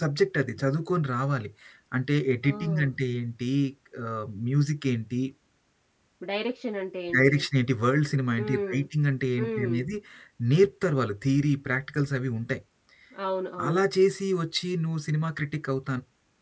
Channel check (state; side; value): identical; both; correlation 1.00